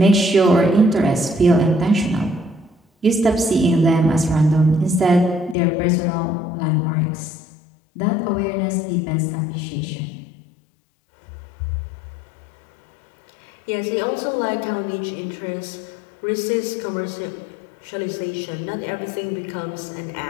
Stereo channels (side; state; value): right; drops out; at 5.6 s